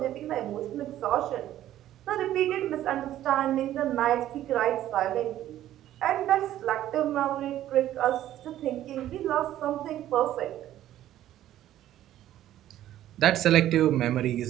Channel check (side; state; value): left; quieter; 12.8 dB